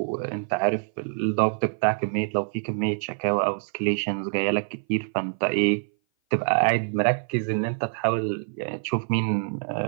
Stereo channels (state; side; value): silent; left; 57 dB below the other